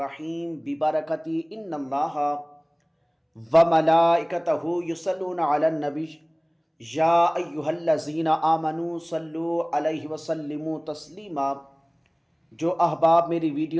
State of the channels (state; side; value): identical; both; correlation 1.00